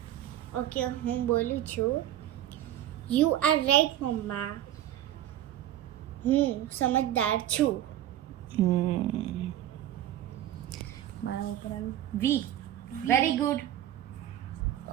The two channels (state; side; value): quieter; left; 12.4 dB